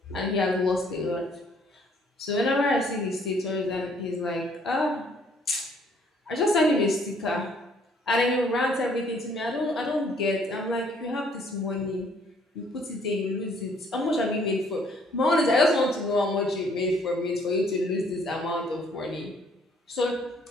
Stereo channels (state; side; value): normal; both; correlation 0.63